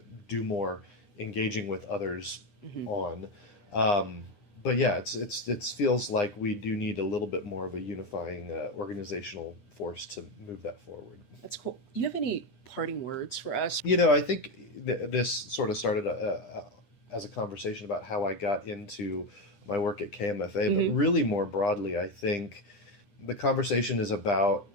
do more engaging with others on. But yeah, it feels like we do need a little bit more of a unifying organizational force to move that forward. That's cool. You have any parting words for us? I think this sort of started as a conversation about how I got into my work at KMFA, but really more broadly, I think the conversation is about,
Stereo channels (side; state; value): right; late; 9.9 ms